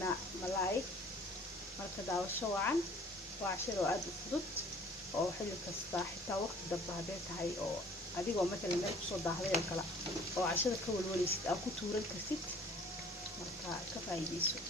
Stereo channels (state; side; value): normal; both; correlation 0.52